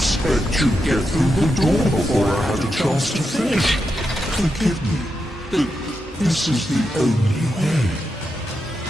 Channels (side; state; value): both; normal; correlation 0.86